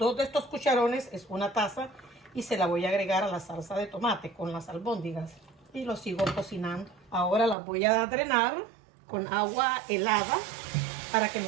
de estos cucharones es una taza y se la voy a agregar a la salsa de tomate con las albóndigas y lo sigo cocinando. Ahora las voy a drenar con agua helada para que no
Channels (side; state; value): left; drops out; at 7.6 s